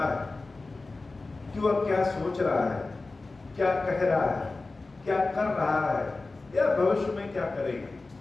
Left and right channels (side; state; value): right; quieter; 3.5 dB